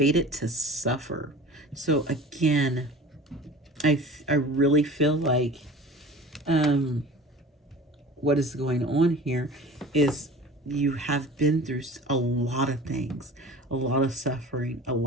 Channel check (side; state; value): both; normal; correlation 0.40